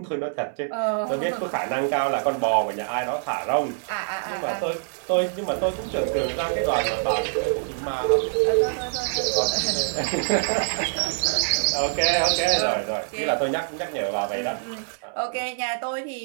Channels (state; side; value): silent; left; digital silence